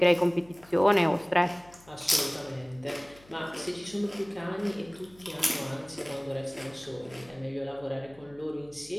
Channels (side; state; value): left; noise; hum, 26 dB below the sound